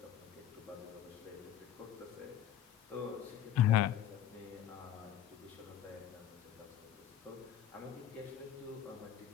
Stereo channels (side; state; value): right; quieter; 10.3 dB